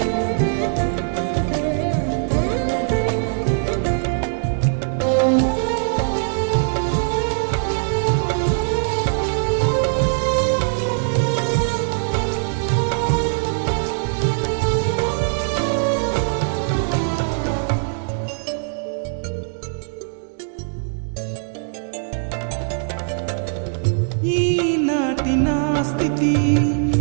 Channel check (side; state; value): left; silent; digital silence